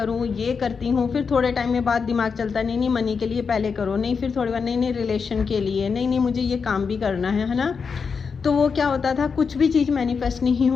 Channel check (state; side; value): quieter; right; 5.6 dB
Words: ये करती हूँ। फिर थोड़े टाइम में बाद दिमाग चलता है नहीं मनी के लिए पहले करो, नहीं फिर थोड़ी बार नहीं रिलेशन के लिए, नहीं मुझे ये काम भी करना है ना। तो वो क्या होता था, कुछ भी चीज़ मैनिफेस्ट नहीं